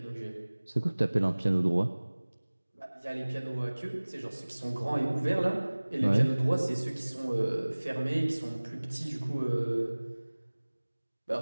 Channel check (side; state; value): both; inverted; correlation -1.00